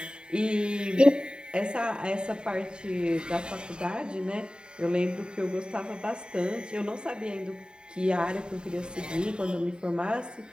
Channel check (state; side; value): late; left; 0.049 ms